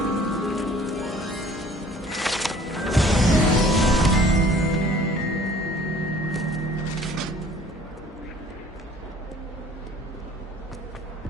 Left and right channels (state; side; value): normal; both; correlation 0.52